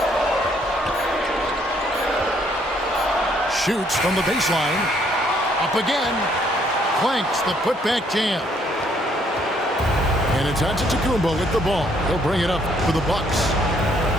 Shoots from the baseline. Up again. Clanks the putback jam. And it's Antetokounmpo with the ball. He'll bring it up for the Bucks.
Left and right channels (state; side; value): normal; both; correlation 0.67